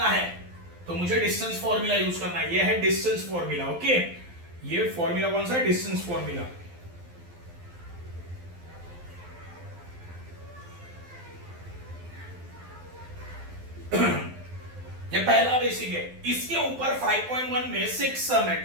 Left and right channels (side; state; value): left; late; 12 ms